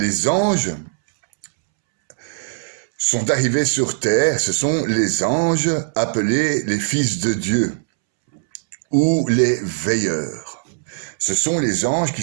anges sont arrivés sur terre, ce sont les anges appelés les fils de Dieu ou les veilleurs. Ce sont les anges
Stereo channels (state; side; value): silent; left; 66 dB below the other